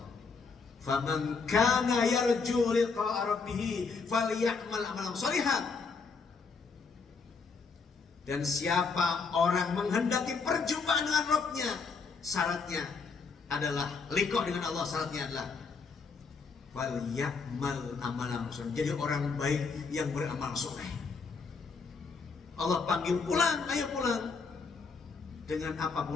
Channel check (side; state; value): right; quieter; 4.9 dB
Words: Faman kana yarju liqa'a rabbih falyamal amalan shalihan. Dan siapa orang menghendaki perjumpaan dengan Rabbnya, syaratnya adalah liqa dengan Allah, syaratnya adalah falyamal amalan shalihan, jadi orang baik yang beramal soleh. Allah panggil, pulang, ayo pulang. Dengan apa